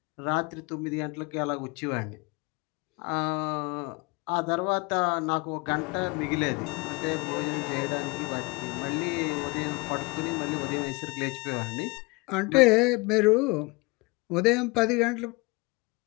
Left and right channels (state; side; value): quieter; right; 26.1 dB